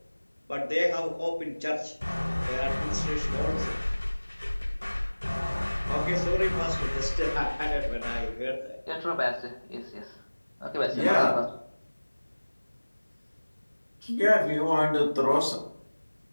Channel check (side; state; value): both; inverted; correlation -1.00